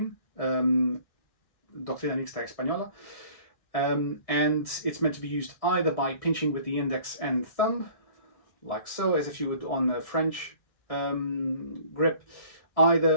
Doctrina Mixta Española, and it's meant to be used either by pinching with the index and thumb, like so, as if you would on a French grip,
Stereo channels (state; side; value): late; right; 1.6 ms